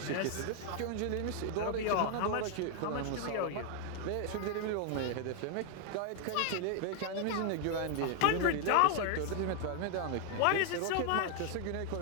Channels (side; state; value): both; different; correlation 0.00